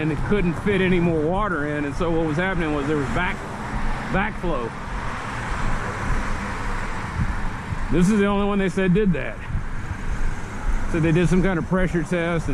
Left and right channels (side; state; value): both; identical; correlation 1.00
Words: it couldn't fit any more water in, and so what was happening was there was backflow. This is the only one they said did that. So they did some kind of pressure test,